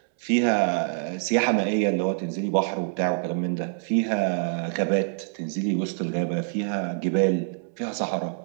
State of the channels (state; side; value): silent; left; 61 dB below the other